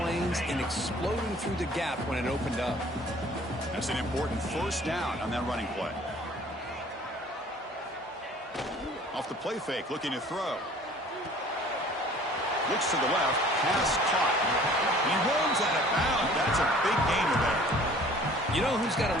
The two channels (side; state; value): both; normal; correlation 0.51